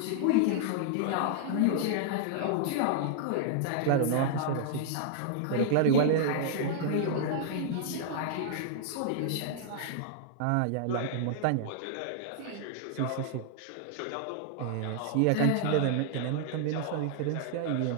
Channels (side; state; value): both; different; correlation -0.01